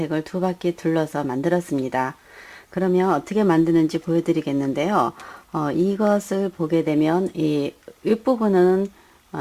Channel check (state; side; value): identical; both; correlation 1.00